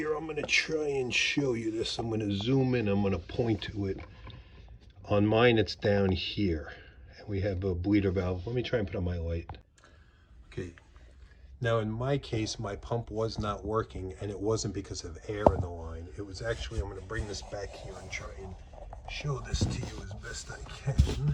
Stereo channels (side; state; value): both; identical; correlation 1.00